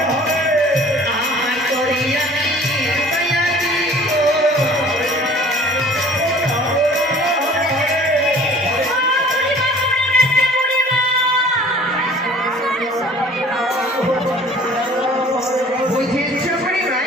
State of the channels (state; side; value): normal; both; correlation 0.49